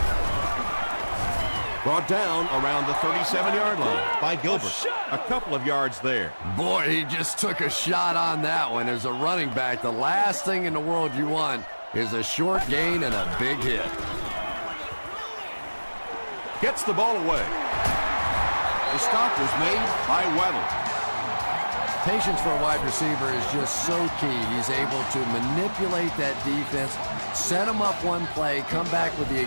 Brought down around the 37-yard line by Gilbert. A couple of yards there. Boy, he just took a shot on that one. As a running back, the last thing in the world you want is a short gain and a big hit. Gets the ball away. The stop was made by Weddle. Patience for a wide receiver is just so key. He's able to manipulate that defense, set them up one play, come back with the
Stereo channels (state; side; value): inverted; both; correlation -1.00